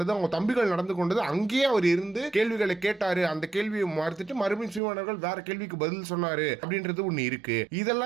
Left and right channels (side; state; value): left; drops out; at 4.8 s